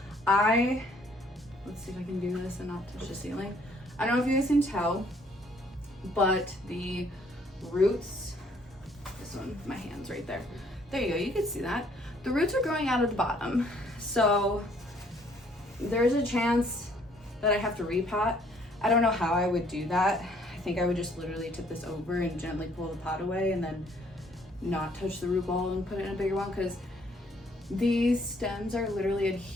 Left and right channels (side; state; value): both; normal; correlation 0.63